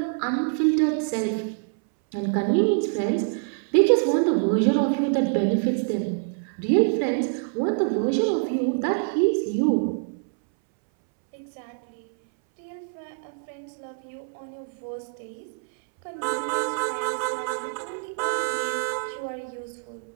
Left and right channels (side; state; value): left; silent; 61 dB below the other